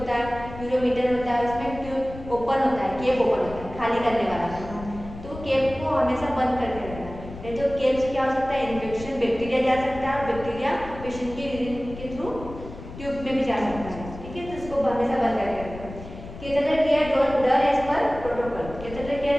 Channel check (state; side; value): noise; left; rumble, 13 dB below the sound